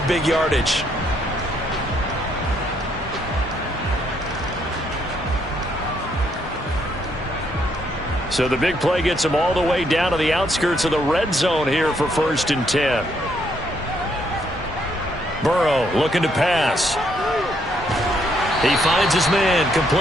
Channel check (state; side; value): normal; both; correlation 0.72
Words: big yardage. So the big play gets them all the way down to the outskirts of the red zone here for 1st and 10. Burrow looking to pass. He finds his man